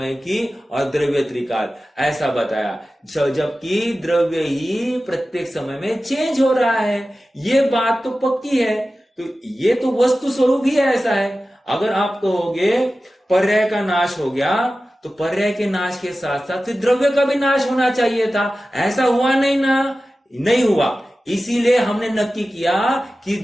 की और द्रव्य त्रिकाल ऐसा बताया, जबकि द्रव्य ही प्रत्येक समय में चेंज हो रहा है। ये बात तो पक्की है, तो ये तो वस्तु स्वरूप ही ऐसा है। अगर आप कहोगे पर्याय का नाश हो गया, तो पर्याय के नाश के साथ साथ द्रव्य का भी नाश होना चाहिए था, ऐसा हुआ नहीं ना, नहीं हुआ। इसीलिए हमने नक्की किया कि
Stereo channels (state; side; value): normal; both; correlation 0.95